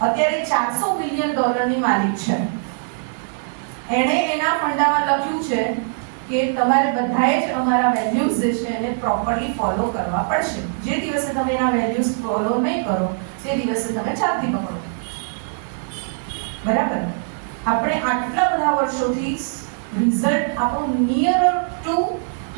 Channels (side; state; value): left; silent; 65 dB below the other